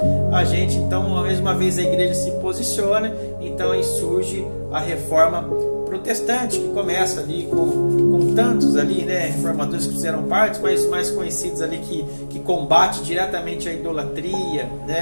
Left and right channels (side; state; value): both; inverted; correlation -1.00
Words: mais uma vez a igreja se posiciona. Então aí surge a reforma protestante, que começa ali com tantos ali, né, reformadores que fizeram parte, mas mais conhecidos ali que combate diretamente a idolatria,